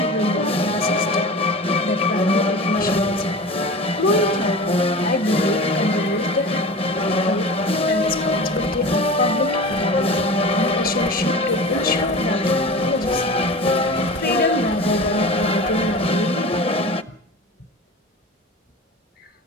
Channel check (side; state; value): both; normal; correlation 0.34